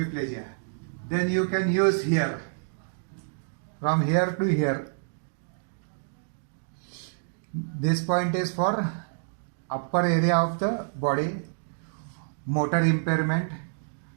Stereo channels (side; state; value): left; silent; digital silence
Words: Then you can use here, from here to here. This point is for upper area of the body, motor impairment,